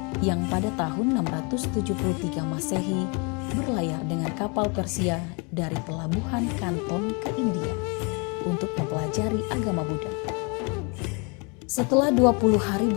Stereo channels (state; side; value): quieter; right; 32.5 dB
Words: yang pada tahun 673 Masehi berlayar dengan kapal Persia dari pelabuhan Kanton ke India untuk mempelajari agama Buddha. Setelah 20 hari